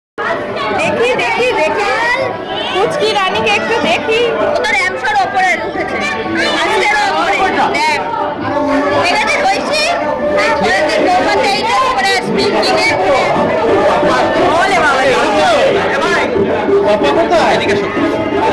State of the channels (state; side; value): identical; both; correlation 1.00